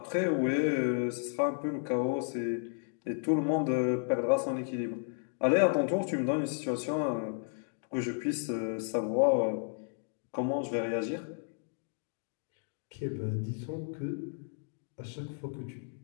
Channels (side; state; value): right; silent; 56 dB below the other